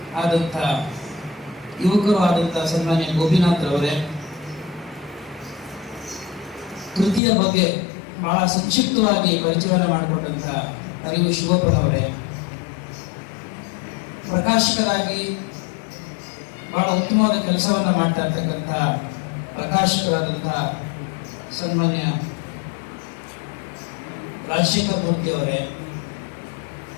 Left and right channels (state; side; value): drops out; right; at 7.2 s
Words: ಆದಂಥ ಯುವಕರು ಆದಂಥ ಸನ್ಮಾನ್ಯ ಗೋಪಿನಾಥ್ ಅವರೇ, ಕೃತಿಯ ಬಗ್ಗೆ ಬಹಳ ಸಂಕ್ಷಿಪ್ತವಾಗಿ ಪರಿಚಯವನ್ನು ಮಾಡಿಕೊಟ್ಟಂಥ ಅರಿವು ಶಿವಪ್ಪನವರೇ, ಪ್ರಕಾಶಕರಾಗಿ ಬಹಳ ಉತ್ತಮವಾದ ಕೆಲಸವನ್ನು ಮಾಡ್ತಾ ಇರ್ತಕ್ಕಂಥ ಪ್ರಕಾಶಕರಾದಂಥ ಸನ್ಮಾನ್ಯ ರಾಜಶೇಖರ್ ಮೂರ್ತಿ ಅವರೇ,